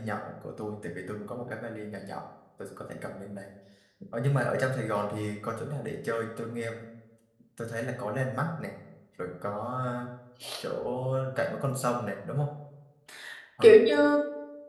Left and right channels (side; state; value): both; identical; correlation 1.00